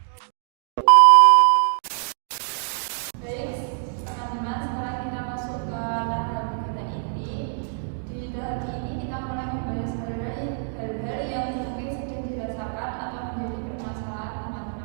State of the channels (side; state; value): left; silent; digital silence